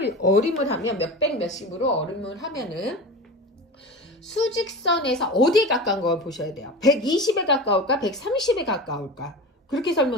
어림을 하면 몇백 몇십으로 어림을 하면은 수직선에서 어디에 가까운 걸 보셔야 돼요. 120에 가까울까 130에 가까울까. 그렇게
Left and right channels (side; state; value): both; normal; correlation 0.30